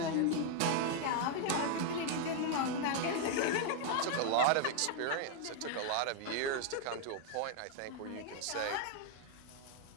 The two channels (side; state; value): both; different; correlation 0.00